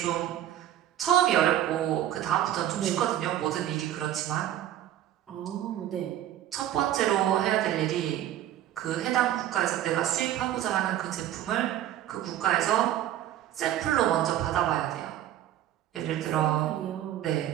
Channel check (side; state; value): left; quieter; 12.2 dB